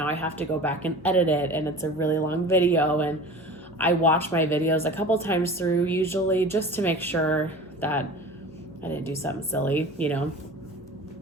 I have to go back and edit it, and it's a really long video, and I watch my videos a couple times through usually just to make sure that I didn't do something silly, you know.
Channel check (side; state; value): left; noise; hum, 25 dB below the sound